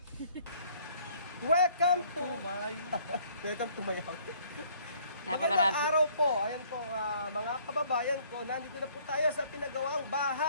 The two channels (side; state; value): both; inverted; correlation -0.60